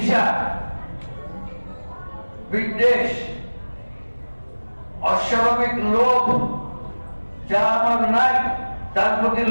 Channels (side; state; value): both; inverted; correlation -1.00